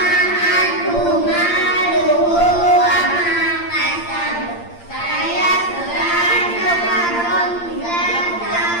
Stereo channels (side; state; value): right; late; 8.7 ms